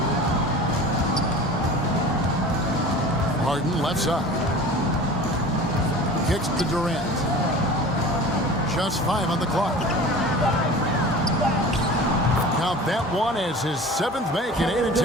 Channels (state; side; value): normal; both; correlation 0.39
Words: Harden left side. Kicks to Durant. Just 5 on the clock. Count that one as his 7th make in 8